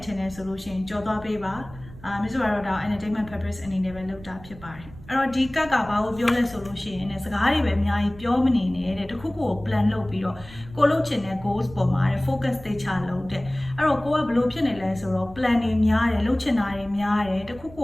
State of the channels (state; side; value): noise; right; rumble, 18 dB below the sound